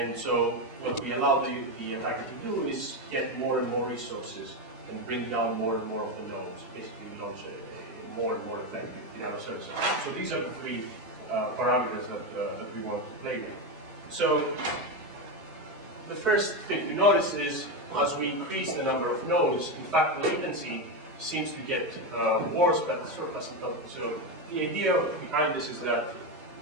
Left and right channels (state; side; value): normal; both; correlation 0.11